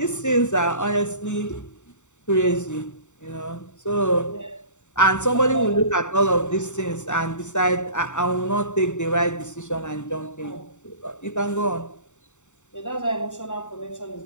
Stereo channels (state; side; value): late; right; 0.84 ms